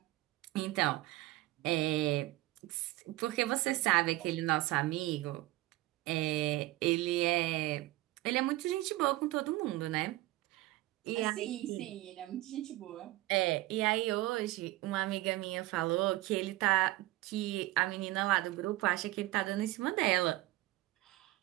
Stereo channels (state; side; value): quieter; left; 18.2 dB